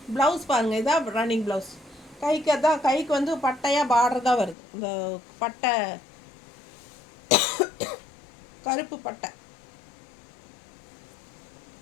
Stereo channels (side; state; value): right; drops out; at 4.5 s